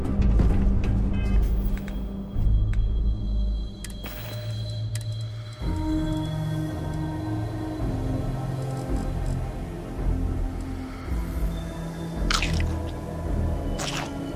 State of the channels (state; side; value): identical; both; correlation 1.00